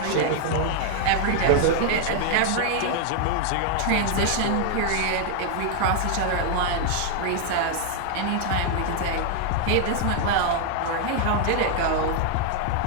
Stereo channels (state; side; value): different; both; correlation 0.00